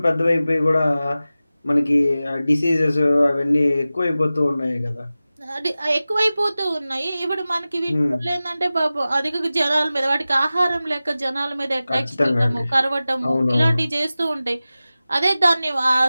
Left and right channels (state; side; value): inverted; both; correlation -0.96